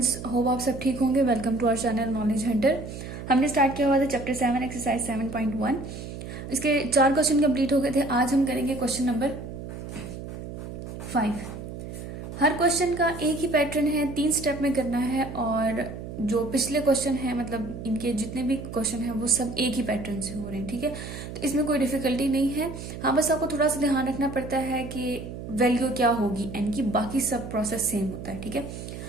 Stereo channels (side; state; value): right; noise; hum, 10 dB below the sound